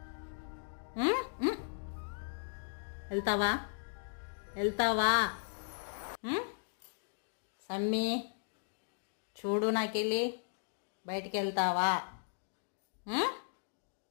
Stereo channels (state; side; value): silent; right; digital silence